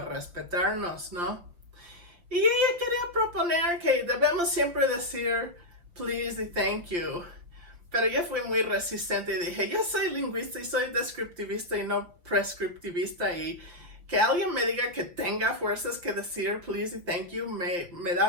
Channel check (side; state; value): left; late; 5.8 ms